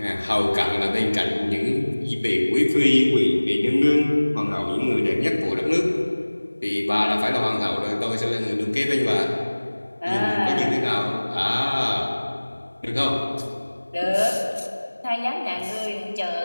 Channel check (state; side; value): inverted; both; correlation -1.00